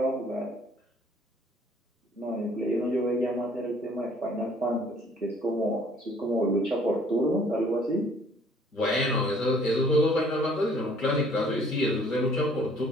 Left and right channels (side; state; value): both; normal; correlation 0.58